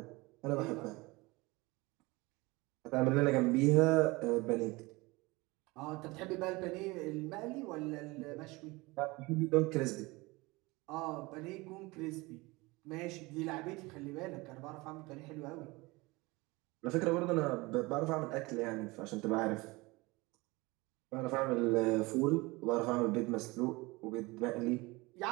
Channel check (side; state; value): left; quieter; 23.2 dB